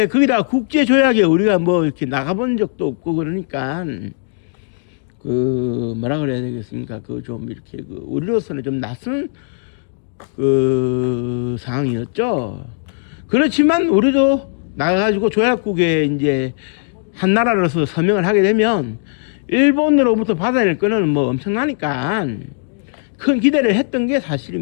거기다 국제조약에 우리가 이렇게 나가본 적도 없고, 그러니까 뭐라 그래야 되겠습니까? 좀 이렇게 우리로서는 좀 낯선 상황이었죠. 그렇지만 우리도 나가가지고 조약국에 이제 한 나라로서 서명을 하게 되면 일본으로부터 받아낼 거는 엄청나니까 큰 기대를 했던 게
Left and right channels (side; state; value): right; silent; digital silence